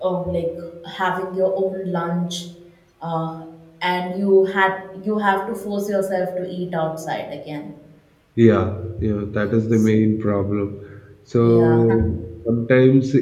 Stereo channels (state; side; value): identical; both; correlation 1.00